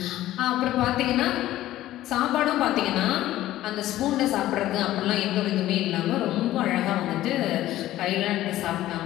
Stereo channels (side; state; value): right; quieter; 14.6 dB